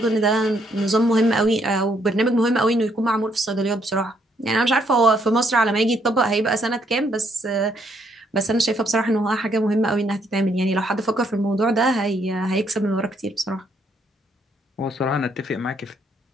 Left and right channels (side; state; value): both; normal; correlation 0.72